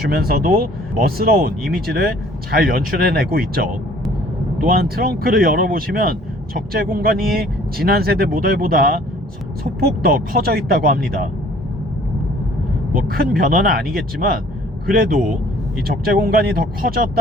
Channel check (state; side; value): normal; both; correlation 0.55